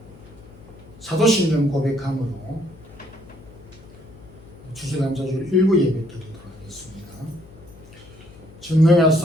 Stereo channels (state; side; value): noise; left; hum, 22 dB below the sound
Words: 사도신경 고백함으로 추수감사주일 일부 예배 드리도록 하겠습니다.